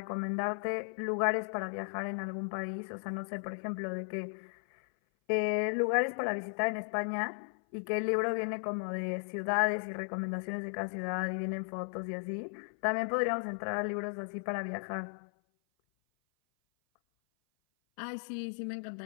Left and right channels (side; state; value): right; silent; 54 dB below the other